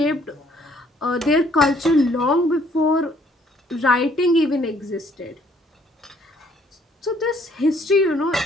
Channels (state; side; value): normal; both; correlation 0.64